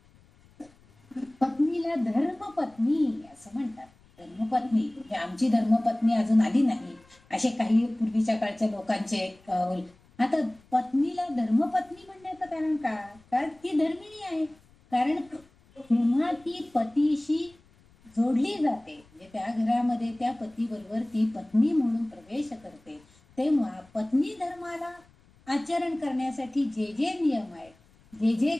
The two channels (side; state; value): left; noise; rumble, 29 dB below the sound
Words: पत्नीला धर्मपत्नी असं म्हणतात. धर्मपत्नी म्हणजे आमची धर्मपत्नी अजून आली नाही असे काही पूर्वीच्या काळच्या लोकांचे आता पत्नीला धर्मपत्नी म्हणण्याचं कारण का? कारण ती धर्मिणी आहे. कारण जेव्हा ती पतीशी जोडली जाते, म्हणजे त्या घरामध्ये त्या पतीबरोबर ती पत्नी म्हणून प्रवेश करते, तेव्हा पत्नी धर्माला आचरण करण्यासाठी जे जे नियम आहेत, जे जे